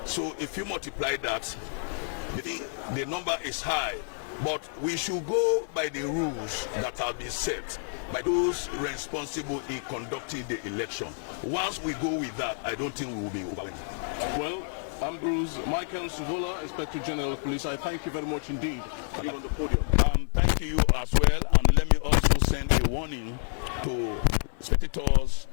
So if you multiply that, the number is high. But we should go by the rules that have been set by those responsible in conducting the election. Once we go with that, I don't think we will be overwhelmed. Well, Ambrose Michael Suvola, Inspector General of Police, I thank you very much indeed for being on the podium. Thank you as well, and let me also send a warning to spectators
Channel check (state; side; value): silent; right; 59 dB below the other